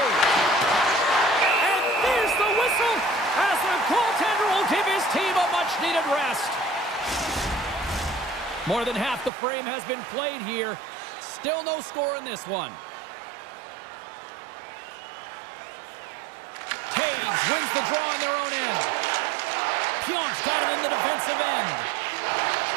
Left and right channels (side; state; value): left; drops out; at 9.3 s